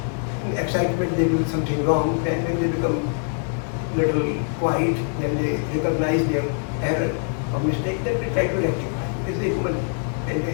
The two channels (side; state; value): right; silent; 56 dB below the other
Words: in excitement they do something wrong, and when they become little quiet, then they recognize their error or mistake, then they try to rectify. It's a human